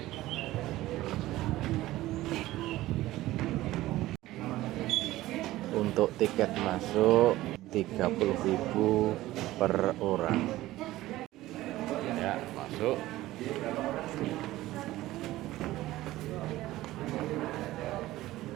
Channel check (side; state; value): left; quieter; 16.5 dB